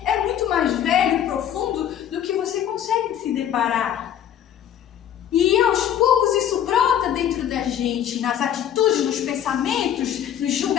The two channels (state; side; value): quieter; right; 10.1 dB